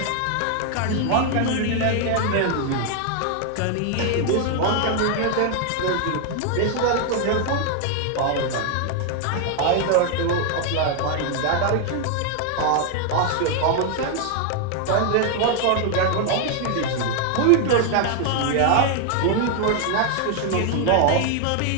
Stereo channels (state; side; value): different; both; correlation 0.00